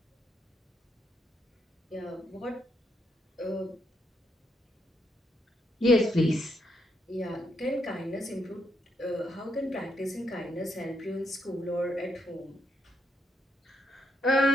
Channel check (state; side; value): normal; both; correlation 0.77